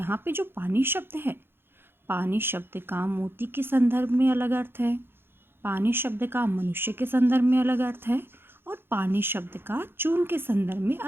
पे जो पानी शब्द है, पानी शब्द का मोती के संदर्भ में अलग अर्थ है, पानी शब्द का मनुष्य के संदर्भ में अलग अर्थ है और पानी शब्द का चून के संदर्भ में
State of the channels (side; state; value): left; late; 0.11 ms